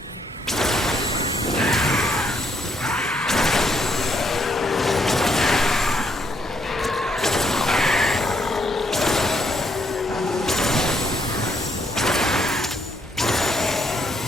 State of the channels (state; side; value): normal; both; correlation 0.73